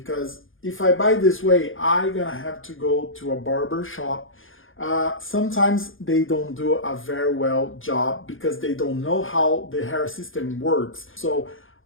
if I buy this way, I'm gonna have to go to a barber shop. Sometimes they don't do a very well job because they don't know how the hair system works. So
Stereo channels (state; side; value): late; right; 0.58 ms